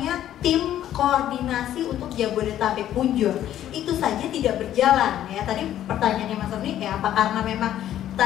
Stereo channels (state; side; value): quieter; right; 11.8 dB